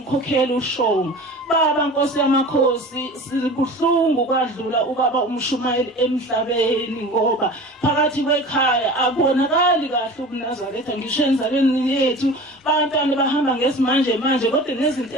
uShonga. Baba Nkosi yamakhosi sibuhlungu kwadlula ubaba umshumayeli emhlabeni ngoba phakathi kwekhaya akubonakali kahle ubuNazaretha ngisho enzalweni yethu. Bantwana bahamba ngesimanje manje kodwa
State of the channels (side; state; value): both; normal; correlation 0.37